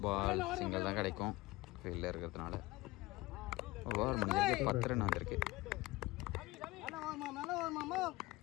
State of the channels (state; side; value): quieter; right; 20.1 dB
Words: ball, single தான் கிடைக்கும் ஃபீல்டில் இருக்கிறதுனால. ஓவர் முடிஞ்சிருக்கு, 10 ரன் வந்திருக்கு.